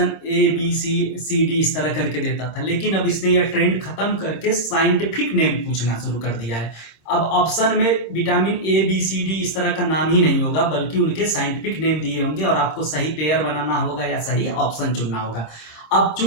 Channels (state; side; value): late; right; 25 ms